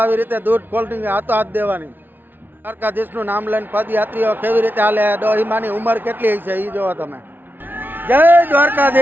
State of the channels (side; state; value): left; late; 0.092 ms